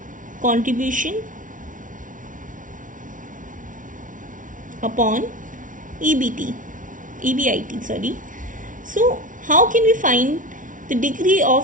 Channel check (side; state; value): left; late; 0.38 ms